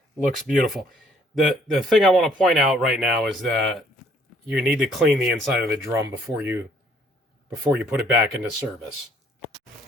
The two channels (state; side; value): normal; both; correlation 0.62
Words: looks beautiful. The thing I want to point out right now is that you need to clean the inside of the drum before you put it back into service.